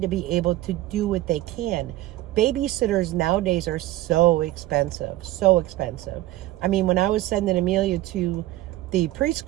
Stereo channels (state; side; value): quieter; left; 16.2 dB